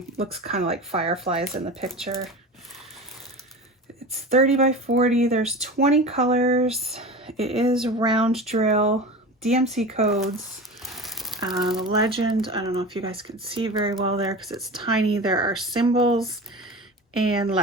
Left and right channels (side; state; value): both; normal; correlation 0.31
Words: looks kind of like fireflies in the picture. It's 30 by 40, there's 20 colors. It is round drill, DMC codes. The legend, I don't know if you guys can see very well there because it's tiny. There are symbols and